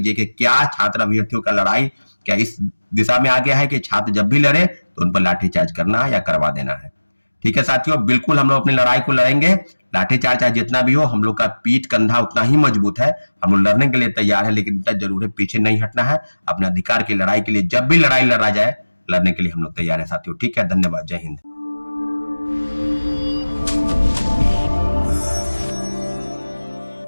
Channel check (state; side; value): inverted; both; correlation -1.00